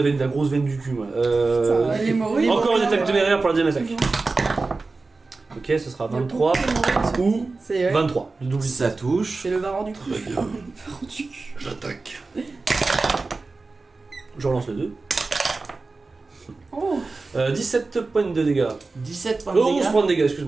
grosse veine du cul, moi. Putain, l'hémorroïde. Encore une attaque téméraire pour la deuxième attaque. Ok, ce sera 23 ou C'est 23. Le double. Ça touche. C'est le varan du cul. Très bien. Le varan du cul. J'attaque. Je relance le 2. Oh 17 points de dégâts. 17 points de 11 dégâts. points de dégâts,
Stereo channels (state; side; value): quieter; left; 3.7 dB